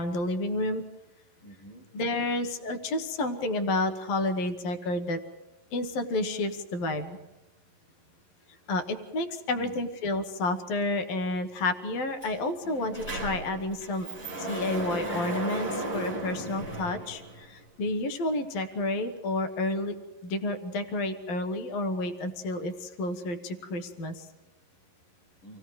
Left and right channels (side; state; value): right; late; 11 ms